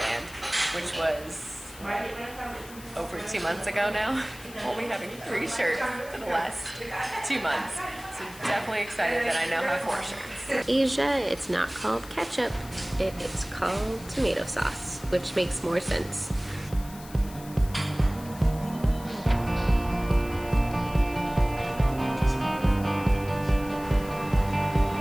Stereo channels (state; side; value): noise; left; hiss, 18 dB below the sound